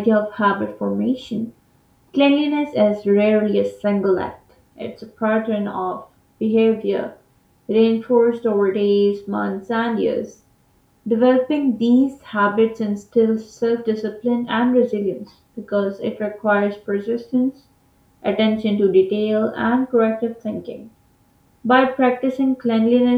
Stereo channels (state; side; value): identical; both; correlation 1.00